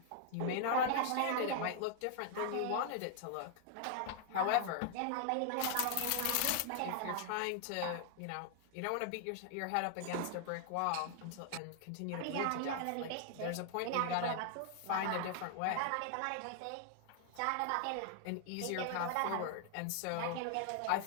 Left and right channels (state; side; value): different; both; correlation 0.00